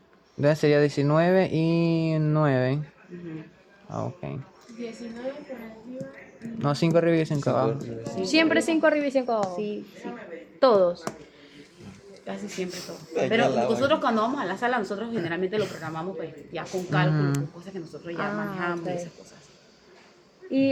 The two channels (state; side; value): identical; both; correlation 1.00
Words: Entonces sería 19 y 9. Ujú. Ah, ok. 19 por arriba. No, 5 arriba y 5 abajo. Siempre 5 arriba y 5 abajo. Sí, sí. Todos. Casi siempre todo. Ay, Pero ya la nosotros cuando vamos a la sala, nosotros generalmente lo programamos pues ya con cálculo, con cosas que nosotros ya manejamos ok. y esas cosas. ¿Y